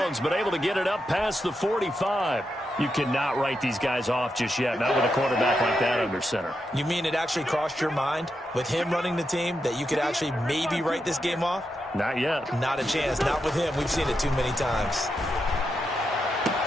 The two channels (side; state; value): both; normal; correlation 0.85